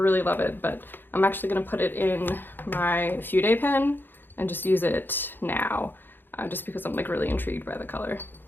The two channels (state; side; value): late; right; 0.096 ms